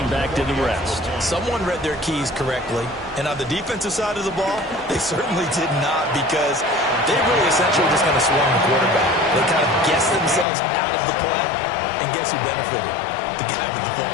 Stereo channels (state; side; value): drops out; right; at 10.5 s